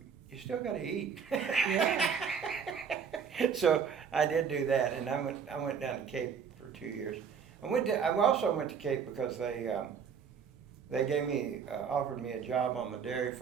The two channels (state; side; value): quieter; left; 6.7 dB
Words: still got to eat. Yeah. So I did do that, and I went down to Cape for 2 years. I also went to Cape because they offered me a job on the dairy